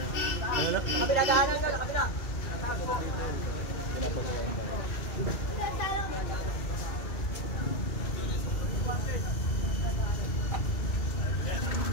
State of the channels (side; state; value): right; late; 2.4 ms